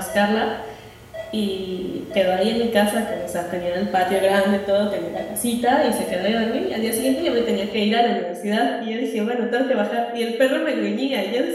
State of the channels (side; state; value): both; identical; correlation 1.00